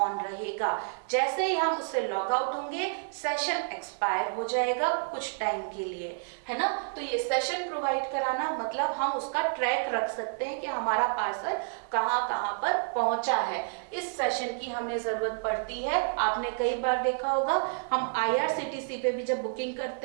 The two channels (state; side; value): silent; left; digital silence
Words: रहेगा। जैसे ही हम उससे लॉग आउट होंगे, सेशन एक्सपायर हो जाएगा कुछ टाइम के लिए, है ना। तो ये सेशन प्रोवाइड कराना मतलब हम उसका ट्रैक रख सकते हैं कि हमारा पार्सल कहाँ कहाँ पर पहुंचा है। इस सेशन की हमें जरूरत पड़ती है। आपने कई बार देखा होगा, हम IRCTC पे भी जब बुकिंग